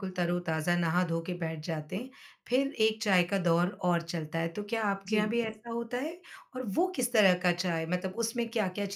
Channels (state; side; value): identical; both; correlation 1.00